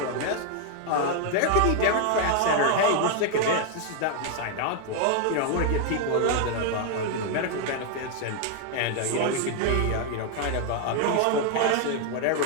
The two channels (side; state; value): both; different; correlation 0.00